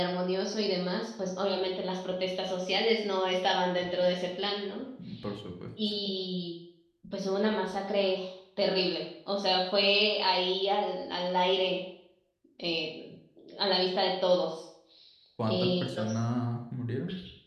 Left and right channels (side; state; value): both; identical; correlation 1.00